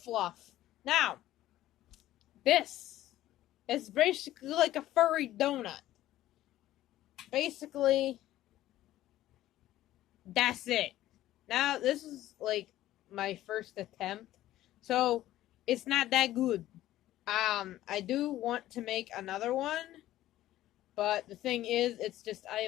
Now, this is basically like a furry donut. Basically, that's it. Now, this is like my first attempt, so it's not that good. I do want to make another one, but the thing is, it's just I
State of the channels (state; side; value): quieter; right; 14.3 dB